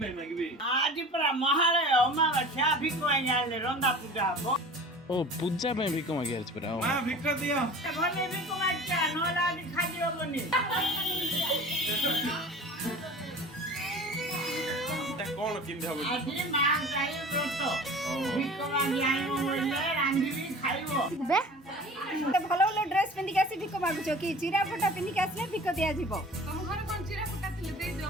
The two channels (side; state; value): both; normal; correlation 0.41